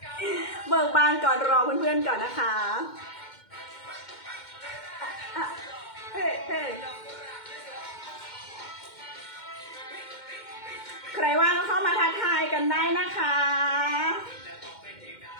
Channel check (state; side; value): late; right; 2.1 ms